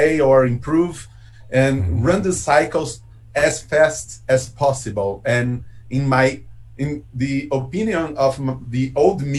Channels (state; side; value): identical; both; correlation 1.00